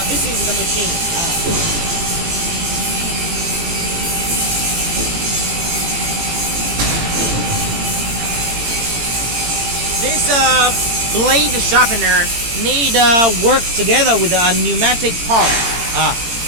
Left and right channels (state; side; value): late; left; 18 ms